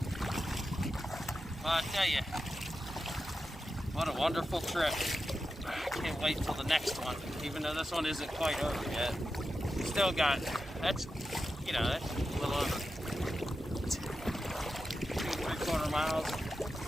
Well, I tell you, what a wonderful trip. I can't wait till the next one, even though this one isn't quite over yet. Still got, that's, you know, that's a little over 2 3/4 miles,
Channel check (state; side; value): normal; both; correlation 0.90